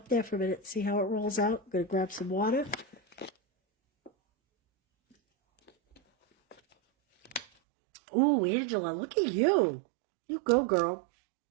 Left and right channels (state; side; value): drops out; left; at 7.5 s